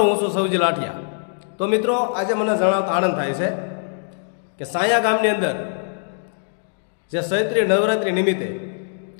હું છું સૌજી લાઠિયા. તો મિત્રો, આજે મને જણાવતા આનંદ થાય છે કે સાયા ગામની અંદર જે ચૈત્રી નવરાત્રિ નિમિત્તે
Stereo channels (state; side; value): silent; right; digital silence